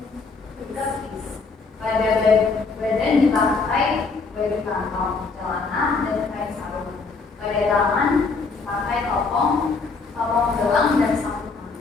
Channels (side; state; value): right; quieter; 4.3 dB